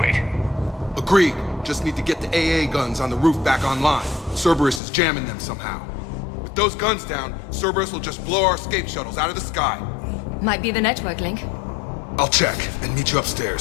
Agreed. Just need to get the AA guns on the roof back online. Cerberus is jamming them somehow. With those guns down, Cerberus will just blow our escape shuttles out of the sky. Might be the network link. I'll check and meet you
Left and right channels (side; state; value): right; drops out; at 4.8 s